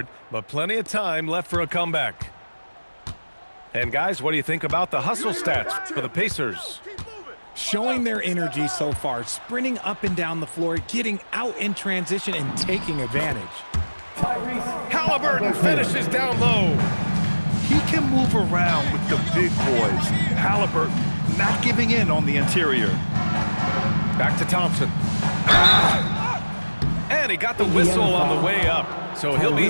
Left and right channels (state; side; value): inverted; both; correlation -1.00